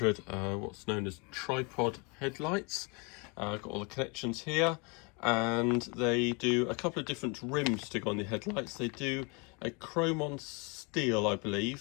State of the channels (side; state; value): right; quieter; 31.3 dB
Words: what's known as tripod headlights. I've got all the connections here, and they do a couple of different rims to go on the headlights. They do a chrome on steel, I